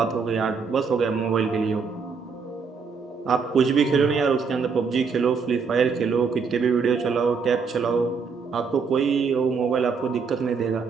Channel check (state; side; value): quieter; left; 5.3 dB